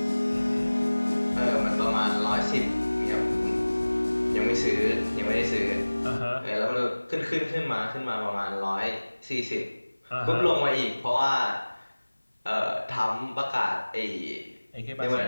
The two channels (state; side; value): inverted; both; correlation -1.00